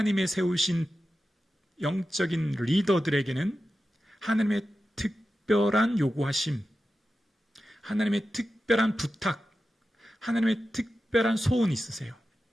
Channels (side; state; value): both; normal; correlation 0.92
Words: 세우신 영적인 리더들에게는 하나님의 특별한 요구하심, 하나님의 특별한 부탁, 하나님의 특별한 소원이 있으세요.